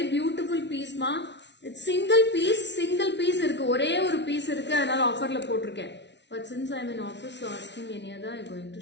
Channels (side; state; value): right; late; 0.51 ms